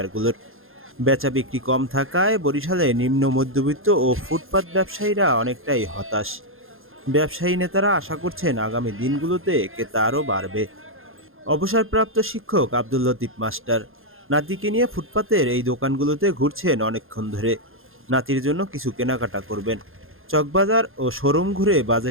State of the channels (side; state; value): left; late; 0.60 ms